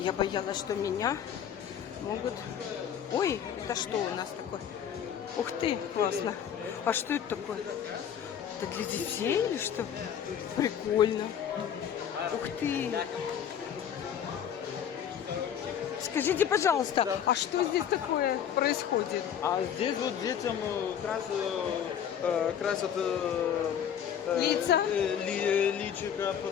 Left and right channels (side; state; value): right; quieter; 8.9 dB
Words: боялась, что меня могут... Ой, это что у нас такое? Ух ты, классно. А что это такое? Это для детей или что? Прикольно. Ух ты. Скажите, пожалуйста, а что здесь такое происходит? А здесь вот детям красят Лица? личико,